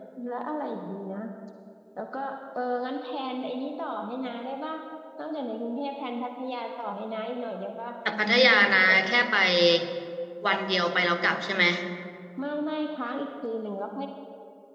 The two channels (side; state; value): both; identical; correlation 1.00